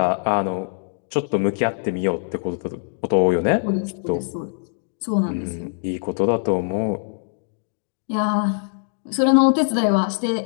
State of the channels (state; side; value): silent; right; digital silence